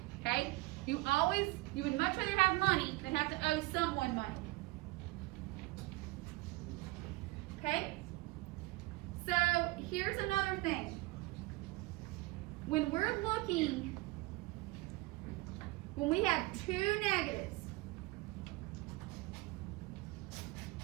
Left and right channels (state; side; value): quieter; left; 21.3 dB